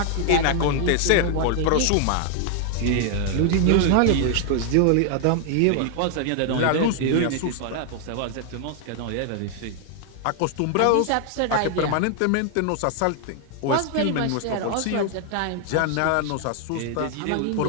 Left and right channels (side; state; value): both; different; correlation 0.00